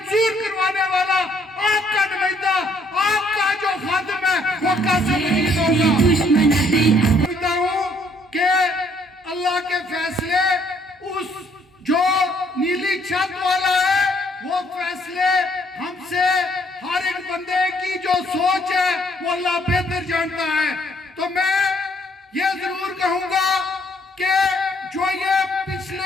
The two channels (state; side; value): normal; both; correlation 0.66